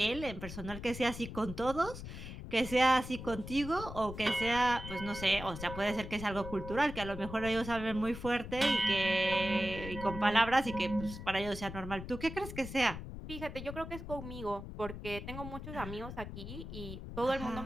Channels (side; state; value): left; noise; rumble, 9 dB below the sound